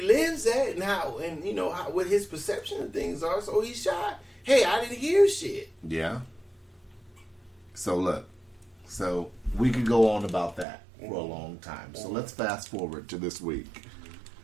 lives at and how, and what his perception of things are. So he shot. Hey, I didn't hear shit. Yeah. So look, we could go on about that for a long time. So let's fast forward to this week.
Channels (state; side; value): drops out; left; at 10.7 s